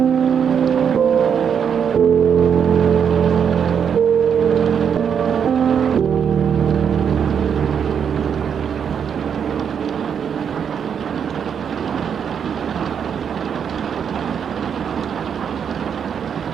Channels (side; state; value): left; quieter; 7.6 dB